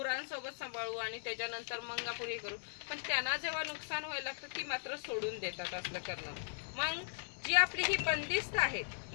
सांभाळू आणि त्याच्यानंतर मंगापुरी करू, पण त्यांना जेव्हा नुकसान व्हायला लागतं ती मात्र सोडून देतात असलं करणं. मग जी आपली ही बंदिस्त आहेत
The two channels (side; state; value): right; silent; digital silence